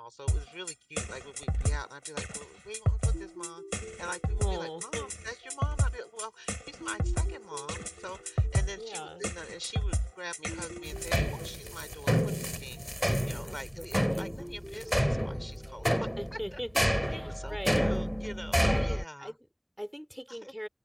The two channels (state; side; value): identical; both; correlation 1.00